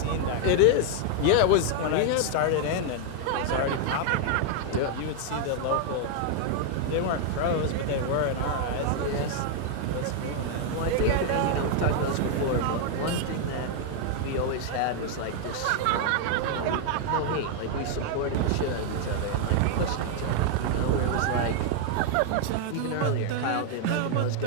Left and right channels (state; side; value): different; both; correlation 0.00